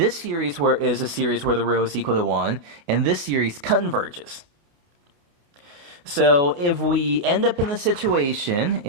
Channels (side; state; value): left; late; 28 ms